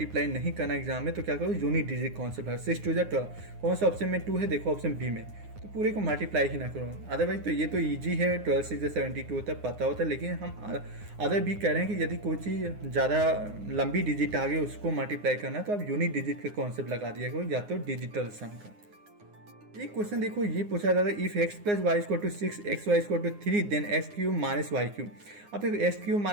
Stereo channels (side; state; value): left; late; 9.7 ms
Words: नहीं करना एग्जाम में, तो क्या करो, यूनिट डिजिट कॉन्सेप्ट है, 6 2 जा 12। कौन सा ऑप्शन में 2 है, देखो ऑप्शन बी में, तो पूरे को मल्टीप्लाई ही ना करो। अदरवाइज तो ये तो ईजी है, 12 6 जा 72 होता है, पता होता है। लेकिन हम अदर भी कह रहे हैं कि यदि कोई चीज़ ज़्यादा लंबी डिजिट आ गई उसको मल्टीप्लाई करना, तो आप यूनिट डिजिट का कॉन्सेप्ट लगा दिया करो, या तो डिजिटल सम का। एक क्वेश्चन देखो, ये पूछा जाता है, if x plus Y equal to 6, X Y equal to 3, then X cube minus Y cube. अब देखो X cube